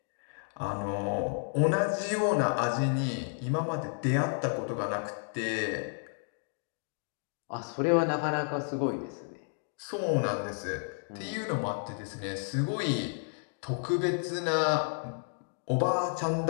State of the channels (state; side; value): silent; right; 57 dB below the other